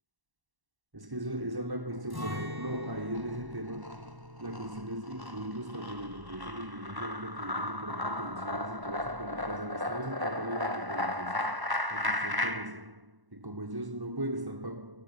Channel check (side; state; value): left; late; 1.1 ms